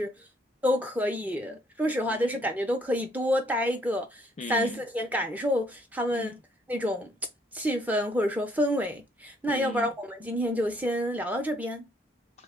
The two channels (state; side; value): normal; both; correlation 0.67